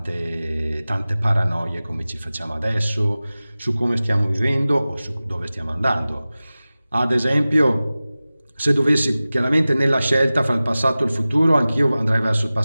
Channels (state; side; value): inverted; both; correlation -0.97